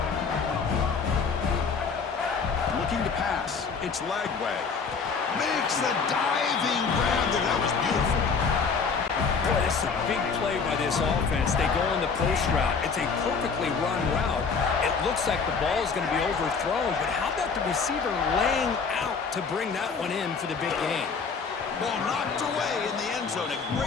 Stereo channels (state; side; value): quieter; right; 5.3 dB